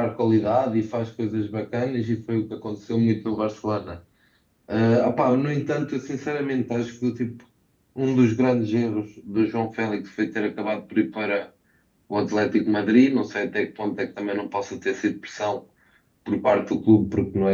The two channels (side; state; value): both; identical; correlation 1.00